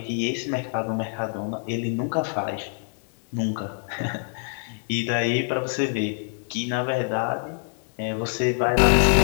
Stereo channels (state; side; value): silent; right; 61 dB below the other